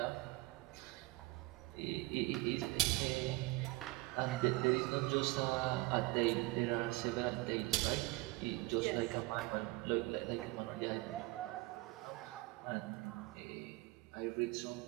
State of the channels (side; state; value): left; quieter; 21.7 dB